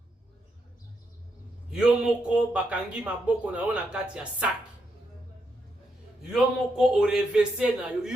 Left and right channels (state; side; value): normal; both; correlation 0.80